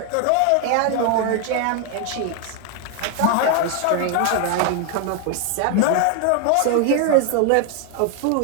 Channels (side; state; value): both; different; correlation 0.01